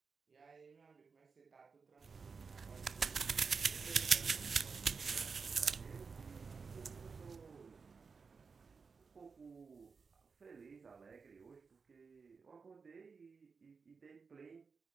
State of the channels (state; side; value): quieter; left; 5.1 dB